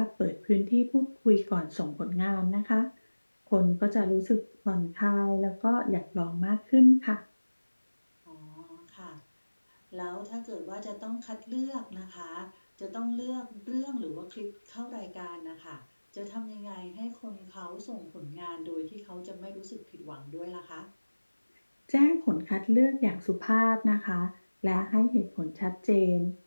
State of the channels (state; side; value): inverted; both; correlation -1.00